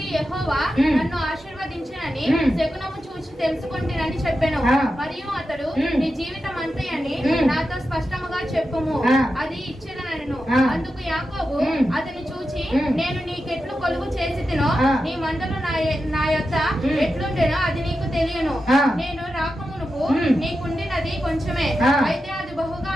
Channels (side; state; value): both; normal; correlation 0.90